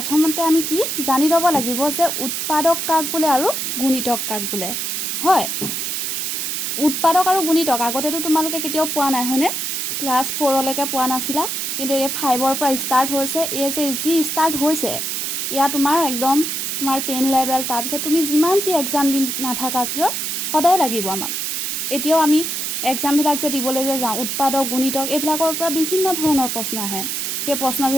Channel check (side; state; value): right; noise; hiss, 2 dB below the sound